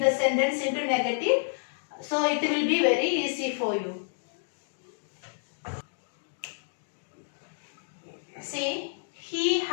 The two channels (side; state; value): right; silent; digital silence